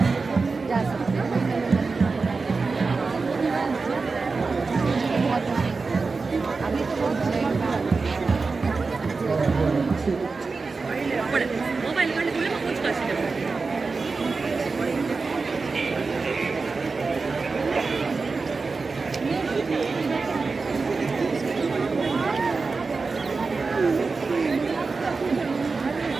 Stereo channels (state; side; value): quieter; left; 4.3 dB